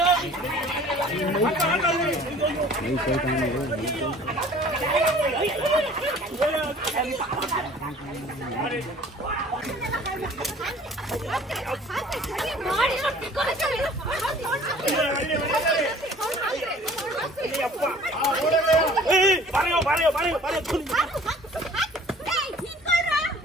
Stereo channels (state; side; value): normal; both; correlation 0.50